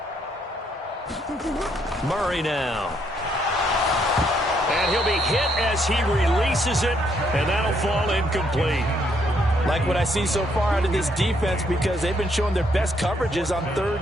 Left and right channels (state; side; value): normal; both; correlation 0.72